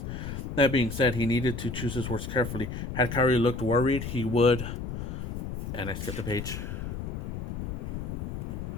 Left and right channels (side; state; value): left; noise; rumble, 5 dB below the sound